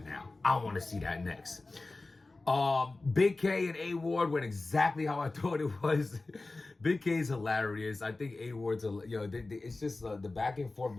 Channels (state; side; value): quieter; right; 3.3 dB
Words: now. I want to see that next. Big K and A Ward went exactly how I thought it was. Big K is hilarious. I think A Ward's, it's just the back and forth